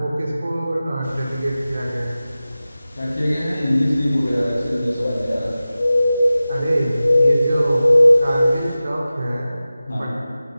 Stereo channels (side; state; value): both; inverted; correlation -0.96